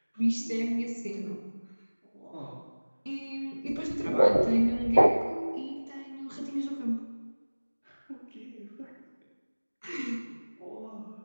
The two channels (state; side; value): inverted; both; correlation -1.00